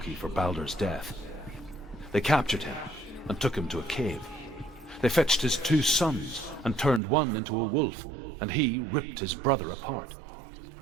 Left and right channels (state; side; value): drops out; left; at 7.0 s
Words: for Baldur's death. They captured him and took him to a cave. They fetched his 2 sons and turned one into a wolf, and he ripped his brother apart.